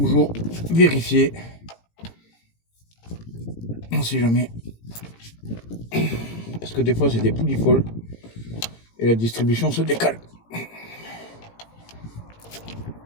vérifier. On sait jamais. Parce que des fois c'est des poulies folles et la distribution se décale.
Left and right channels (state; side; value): late; right; 18 ms